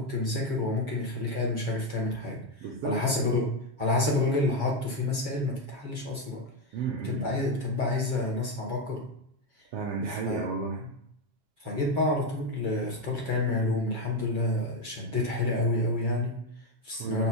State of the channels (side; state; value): left; late; 7.3 ms